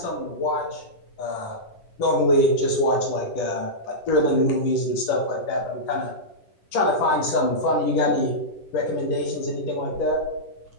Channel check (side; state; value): right; late; 10 ms